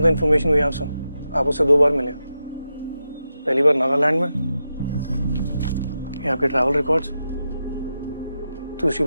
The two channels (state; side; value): inverted; both; correlation -0.88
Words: the information we have, sir. आप उससे 2 बार मिले. पहली बार नागालैंड में. ये आपके ट्रैवल रिकॉर्ड्स. दूसरी